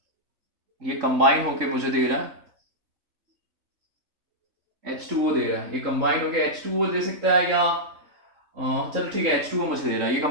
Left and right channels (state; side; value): late; left; 3.7 ms